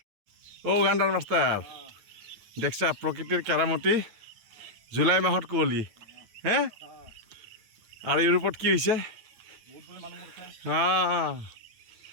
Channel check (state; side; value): late; left; 9.3 ms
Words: গান্ডাৰ মাষ্টাৰ দেখছা প্ৰকৃতিৰ কেৰামতি জুলাই মাহত কুঁৱলী হে আৰু ইউৰোপত কি হৈছে